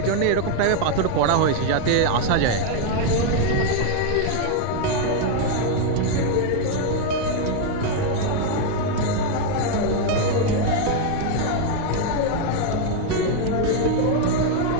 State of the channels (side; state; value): both; different; correlation 0.00